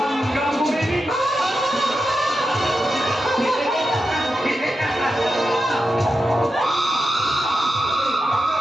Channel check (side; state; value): both; normal; correlation 0.89